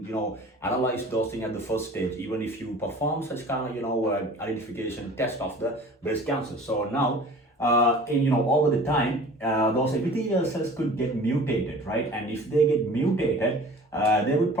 analyze those things at the first stage, even if you perform such kind of identification test of the breast cancer. So now over the time, those epithelial cells could get mutated, right? And if they get mutated, they would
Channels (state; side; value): normal; both; correlation 0.44